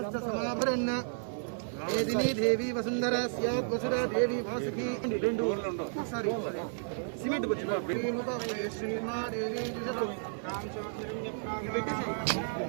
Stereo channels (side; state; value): left; silent; 56 dB below the other